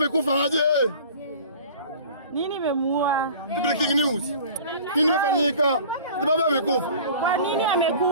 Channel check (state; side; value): inverted; both; correlation -0.43